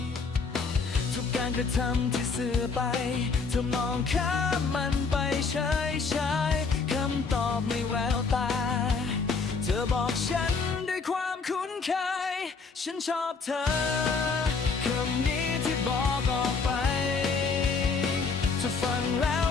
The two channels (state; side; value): quieter; right; 4.7 dB